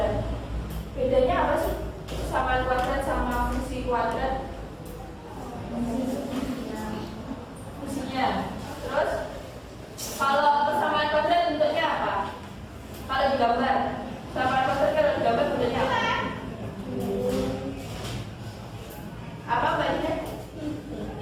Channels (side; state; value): both; identical; correlation 1.00